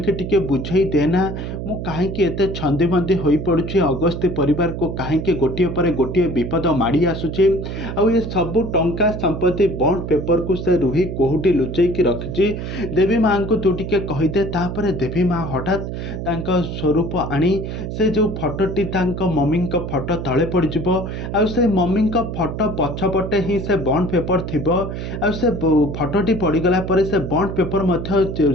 टिके बुझे देना मु कहीं एत छंदी बंदी हो पड़ुछि अगस्ती परिवार को कहीं गोटे पर गोटे विपद माड़ी आसुछि ये सबू टंका संपत्ति बॉन्ड पेपर को से रुही कोहुटी लुचेकी रखिछि देवी माँ को तू टिके कहीदे। तापर देवी माँ हठात तांका स्वरूप आनी से जो फटोटी मम्मी फटो तले पड़ଯିबो आ से मम्मी फटो पछपटे ही से बॉन्ड पेपर थिबो आ से फटोटी पड़गला पर से बॉन्ड पेपर मध्य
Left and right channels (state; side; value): noise; right; hum, 6 dB below the sound